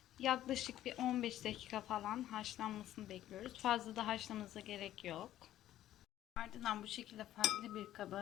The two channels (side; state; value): right; quieter; 13.0 dB